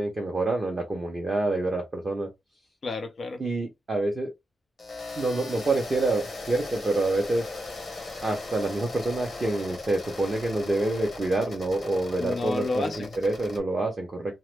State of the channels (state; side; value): normal; both; correlation 0.87